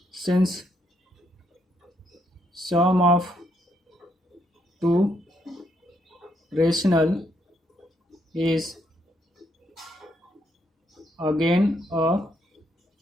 since sum of two rational is again a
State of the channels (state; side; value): normal; both; correlation 0.75